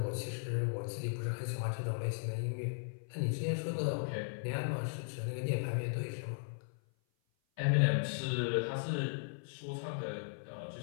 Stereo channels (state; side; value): silent; right; 53 dB below the other